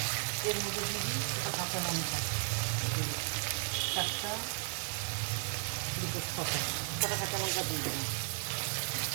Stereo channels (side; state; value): left; silent; digital silence